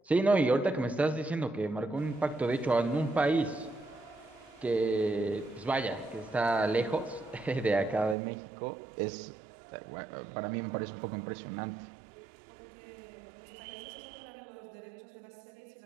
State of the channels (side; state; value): left; drops out; at 8.2 s